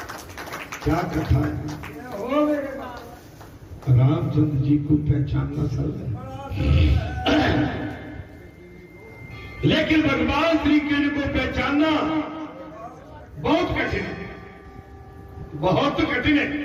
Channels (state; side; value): identical; both; correlation 1.00